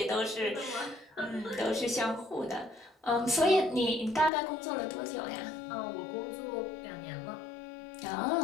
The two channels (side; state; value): right; drops out; at 4.3 s